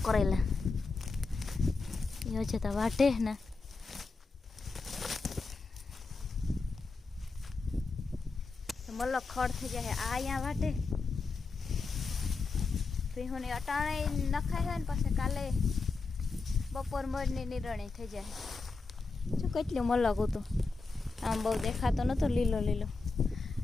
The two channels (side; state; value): right; quieter; 4.1 dB